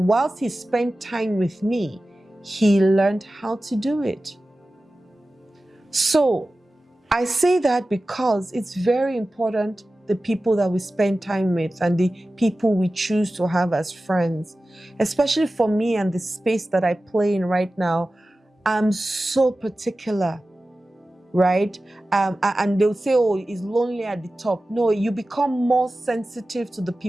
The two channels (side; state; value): both; normal; correlation 0.95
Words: whilst he spent time with me, he learned how to do it. So I say that because it's very important, the people that we spend time with and the people we choose to have as friends. Especially for me and the space that I play in right now, I'm so particular right? And they'll say, oh, it's lonely at the top. No, you become more sensitive to the